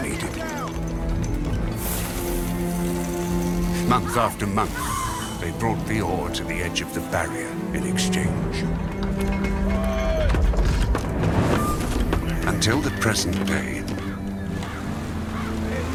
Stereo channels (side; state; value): both; identical; correlation 1.00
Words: needed. Month after month, they brought the ore to the edge of the barrier in exchange. Until the present day,